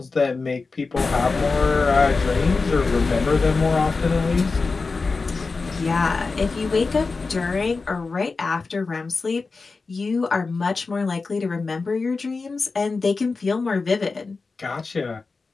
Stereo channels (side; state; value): right; quieter; 4.1 dB